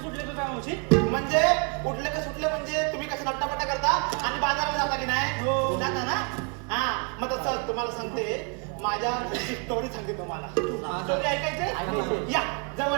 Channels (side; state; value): left; quieter; 34.9 dB